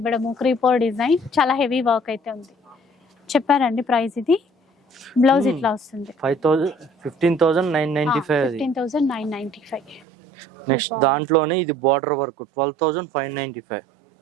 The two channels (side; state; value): left; drops out; at 10.1 s